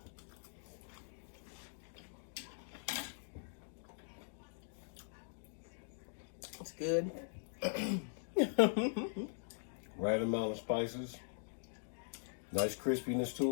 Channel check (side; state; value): right; silent; digital silence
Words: It's good. Right amount of spices. Nice crispiness